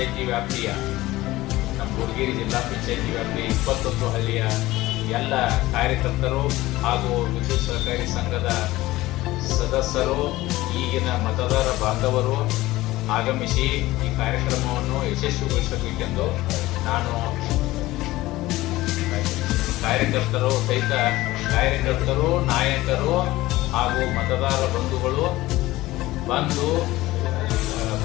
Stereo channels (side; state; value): right; quieter; 17.8 dB